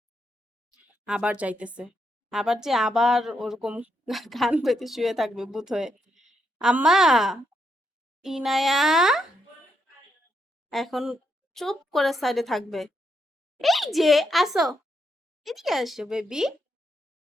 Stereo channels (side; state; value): both; normal; correlation 0.80